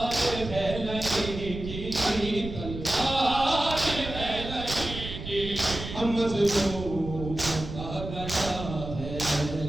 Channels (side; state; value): right; noise; rumble, 8 dB below the sound